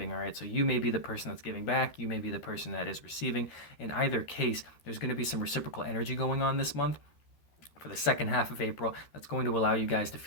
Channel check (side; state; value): right; late; 13 ms